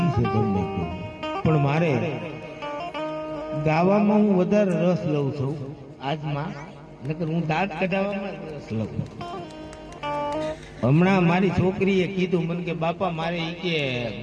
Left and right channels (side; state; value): both; identical; correlation 1.00